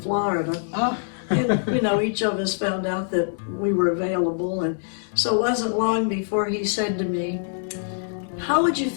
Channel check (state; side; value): silent; right; digital silence